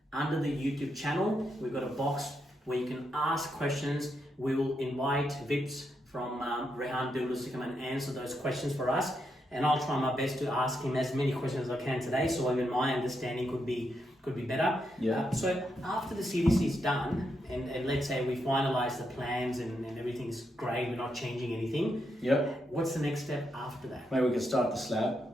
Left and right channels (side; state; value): both; normal; correlation 0.82